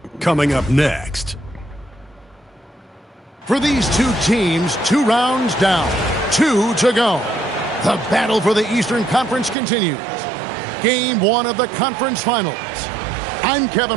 coming up next. For these two teams, 2 rounds down, 2 to go. The battle for the Eastern Conference continues. Game 1 of the conference finals. I'm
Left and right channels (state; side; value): drops out; left; at 9.6 s